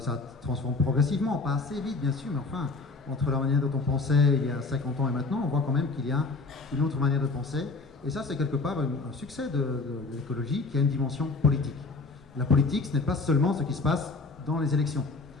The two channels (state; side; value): quieter; right; 3.8 dB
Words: progressivement, pas assez vite bien sûr, mais enfin, entre la manière dont on pensait il y a 50 ans et maintenant, on voit quand même qu'il y a une autre manière de penser. Et ça, c'est quelque part un succès de l'écologie qui a une dimension politique. La politique, ce n'est pas seulement ce qui se passe dans les élections.